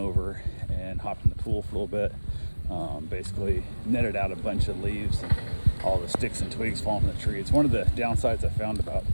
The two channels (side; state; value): both; inverted; correlation -1.00